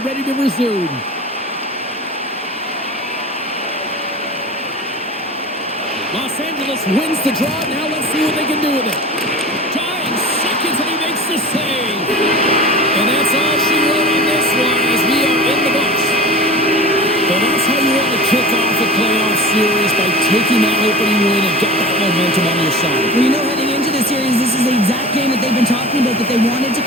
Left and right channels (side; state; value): both; normal; correlation 0.35